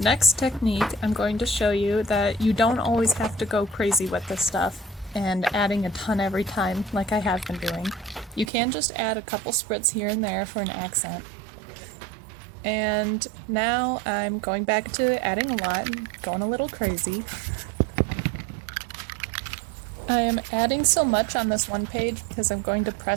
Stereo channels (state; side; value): drops out; left; at 8.5 s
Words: technique, I'm going to show you that you don't always have to go crazy with this stuff and adding a ton every time like I have been doing. You can just add a couple spritz here and there for an accent. And now I'm going back to adding a lot and going a little crazy. I am adding so much on this one page because I'm going to